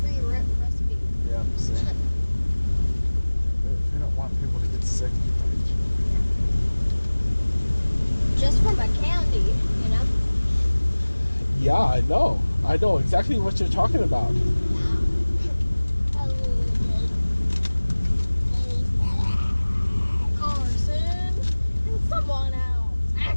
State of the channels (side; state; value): both; inverted; correlation -1.00